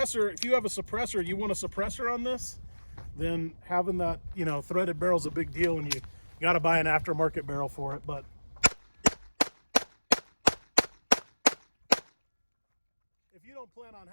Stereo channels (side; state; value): both; inverted; correlation -1.00